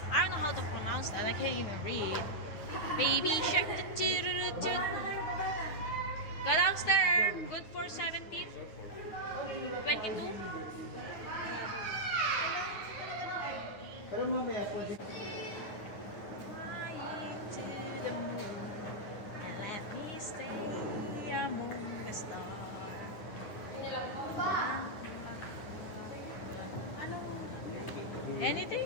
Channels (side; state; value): right; late; 9.6 ms